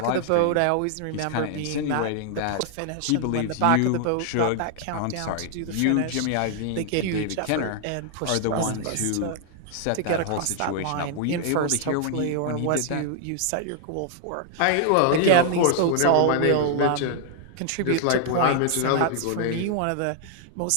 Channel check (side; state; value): both; different; correlation 0.00